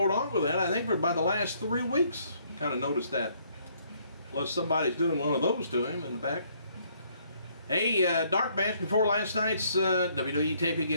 on with that. I think for about the last 3 weeks, kind of noticed that. Unless somebody's doing one of those to him in the back. Hey, dark match before last night's WWE taping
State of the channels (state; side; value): inverted; both; correlation -0.67